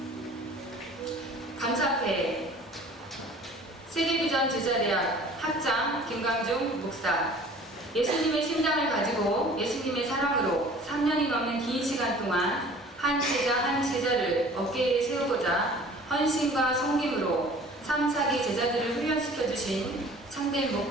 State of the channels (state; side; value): normal; both; correlation 0.48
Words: 감사패 세계비전 제자대학 학장 김광중 목사, 예수님의 심장을 가지고 예수님의 사랑으로 3년이 넘는 긴 시간 동안 한 제자 한 제자를 어깨에 세우고자 헌신과 섬김으로 3, 4기 제자들을 훈련시켜 주신 참된